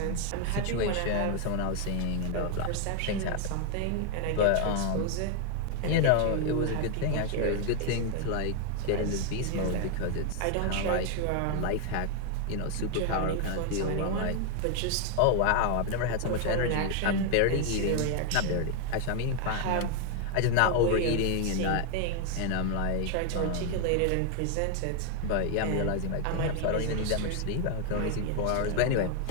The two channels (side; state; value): both; different; correlation 0.01